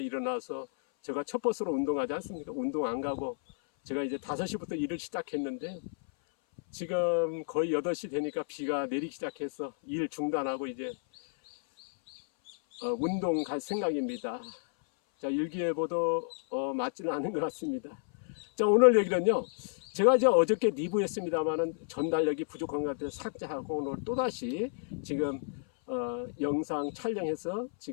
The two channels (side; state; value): right; silent; 57 dB below the other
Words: 일어나서 제가 첫 버스로 운동하지 않습니까? 운동 안 가고 제가 이제 5시부터 일을 시작했는데 지금 거의 8시 되니까 비가 내리기 시작해서 일 중단하고 이제 운동 갈 생각입니다. 자, 일기예보도 맞지는 않은 것 같습니다. 자, 오늘 얘기는요. 제가 이제 어저께 리뷰했습니다만은 전달력이 부족한 것 같아서 삭제하고 오늘 또다시 지금 영상 촬영해서